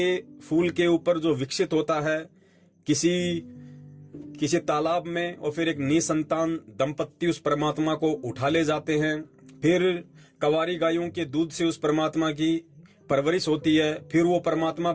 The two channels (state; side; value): identical; both; correlation 1.00